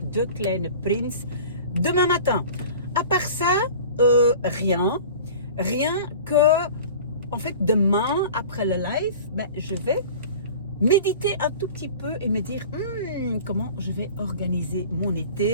De Kleine Prince demain matin. À part ça, rien. Rien que, en fait, demain, après le live, je vais méditer un tout petit peu et me dire comment je vais organiser mon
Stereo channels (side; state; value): both; inverted; correlation -0.41